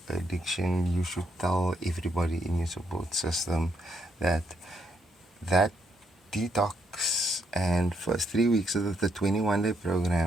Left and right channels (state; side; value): normal; both; correlation 0.75